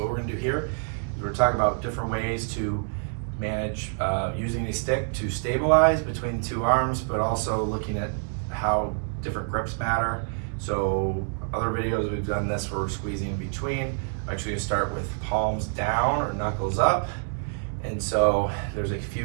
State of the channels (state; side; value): silent; left; 60 dB below the other